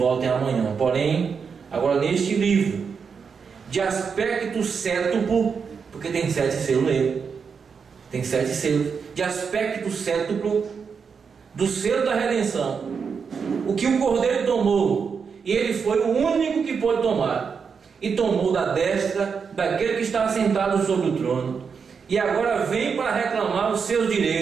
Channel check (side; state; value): left; quieter; 6.0 dB